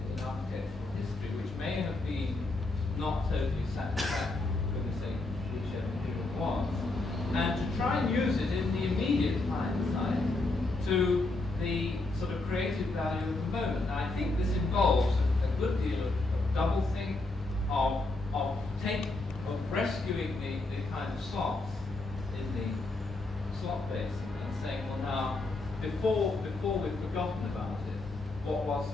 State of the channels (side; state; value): right; quieter; 3.1 dB